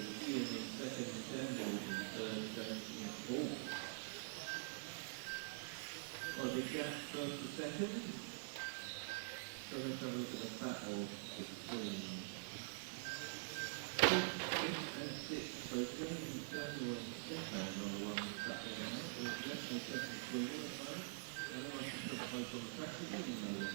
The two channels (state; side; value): silent; left; digital silence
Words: Ian in second, Samuel in third, James in fourth. Quite a big gap first to second. So let's have a look at the battle between 5th and 6th. So James, Samuel and Stefan are the ones battling out. There's definitely second between them at the moment. And then I can put the place on the track again, you know